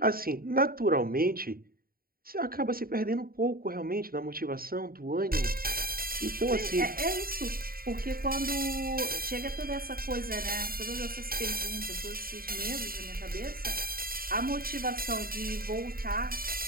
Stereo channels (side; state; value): left; late; 0.43 ms